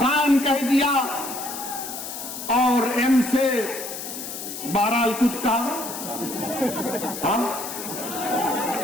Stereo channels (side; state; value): left; noise; hiss, 8 dB below the sound